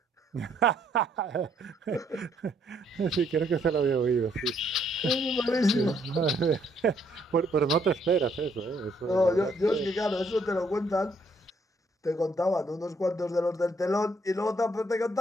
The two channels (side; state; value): both; normal; correlation 0.69